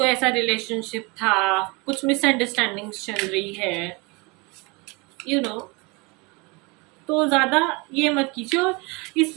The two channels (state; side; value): quieter; left; 27.6 dB